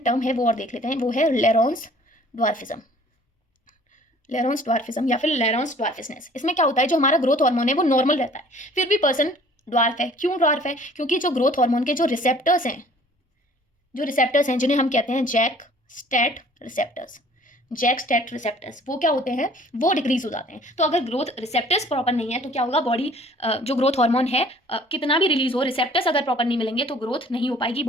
टर्म है वो और देख लेते हैं, वो है लेरोन्स ड्वार्फिज्म, या फिर लेरोन्स ड्वार्फिसनेस। इसमें क्या होता है, जो हमारा ग्रोथ हार्मोन है वो नॉर्मल रहता है, फिर भी पर्सन ड्वार्फ है। क्यों ड्वार्फ है, क्योंकि जो ग्रोथ हार्मोन के जो रिसेप्टर्स हैं जिन्हें हम कहते हैं जैक स्टैट रिसेप्टर्स, वो क्या होते हैं, वो डिक्रीज हो जाते हैं। तो अगर ग्रोथ रिसेप्टर्स प्रॉपर नहीं है तो क्या होगा, बॉडी जो ग्रोथ हार्मोन है कितना भी रिलीज हो, रिसेप्टर्स अगर प्रॉपर नहीं मिलेंगे तो ग्रोथ नहीं हो पाएगी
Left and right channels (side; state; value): both; normal; correlation 0.53